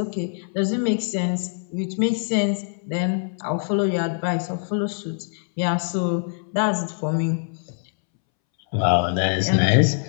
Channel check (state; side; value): silent; right; 63 dB below the other